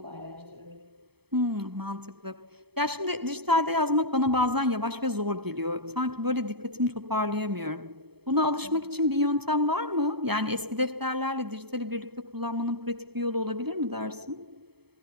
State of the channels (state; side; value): late; left; 0.97 ms